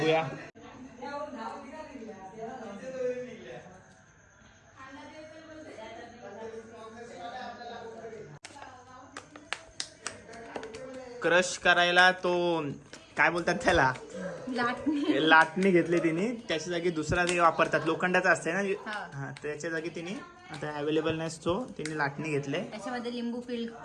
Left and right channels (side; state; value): both; identical; correlation 1.00